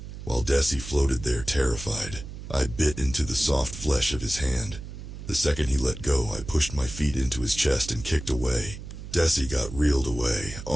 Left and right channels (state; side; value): noise; right; hum, 11 dB below the sound